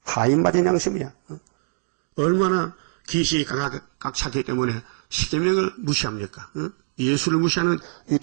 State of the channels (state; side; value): silent; left; digital silence